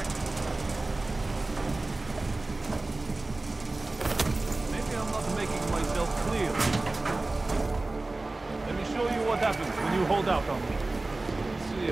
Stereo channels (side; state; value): left; quieter; 3.1 dB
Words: I'm not making myself clear. Let me show you what happens when you hold out on me. See